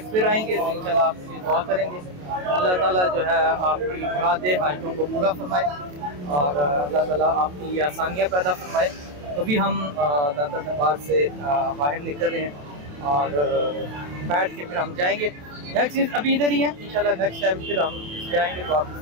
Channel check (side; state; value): left; late; 27 ms